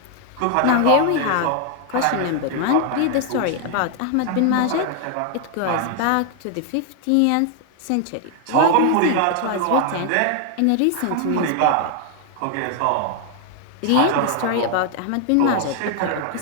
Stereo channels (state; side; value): different; both; correlation 0.00